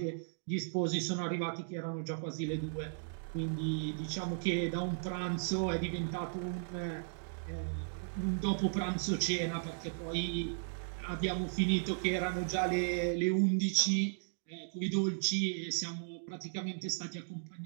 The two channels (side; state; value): left; silent; digital silence